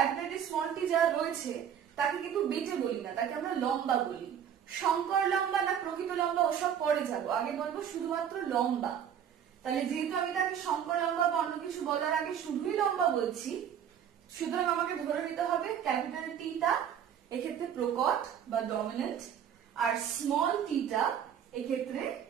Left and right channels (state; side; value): quieter; left; 8.8 dB